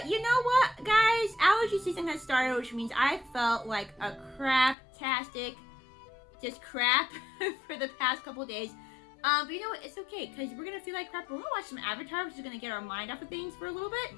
you know what, guys? Allergy season has started, which means I felt like a crap-tastic, just crap for the past couple days. But you know what? It's okay, because we're gonna feel like crap. We're gonna watch some Avatar, which is gonna get our mind off of things for a little bit,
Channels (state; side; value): drops out; right; at 4.8 s